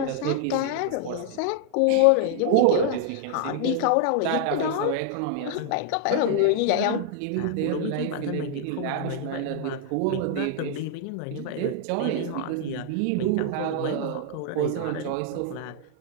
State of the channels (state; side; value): different; both; correlation -0.01